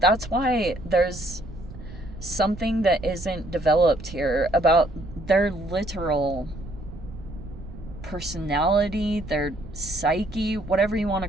why there's something that isn't developed here about their literal personality, their psyche, whatever you want to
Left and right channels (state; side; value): noise; right; rumble, 14 dB below the sound